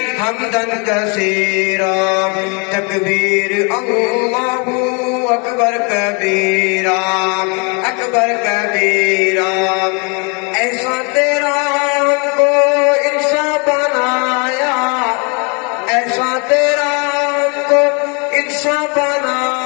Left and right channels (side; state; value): right; quieter; 33.9 dB